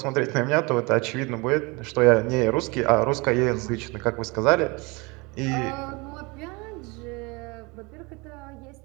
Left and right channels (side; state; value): left; quieter; 27.0 dB